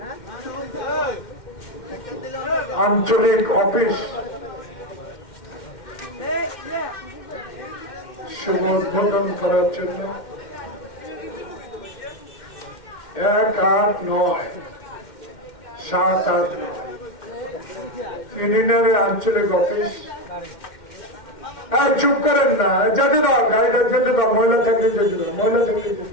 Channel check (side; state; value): right; late; 2.1 ms